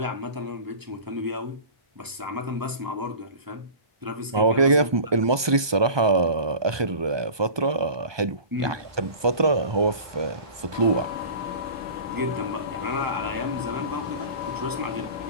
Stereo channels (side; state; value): left; late; 1.2 ms